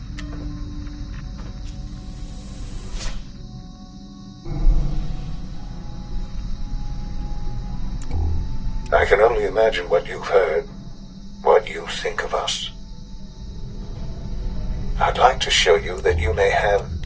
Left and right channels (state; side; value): identical; both; correlation 1.00